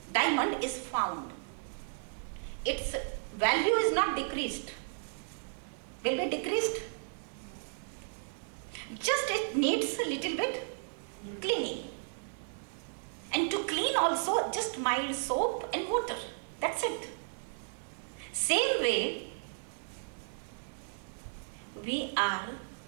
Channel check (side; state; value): left; silent; digital silence